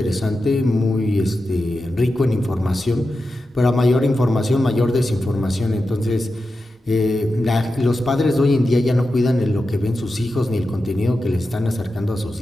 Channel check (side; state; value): both; normal; correlation 0.91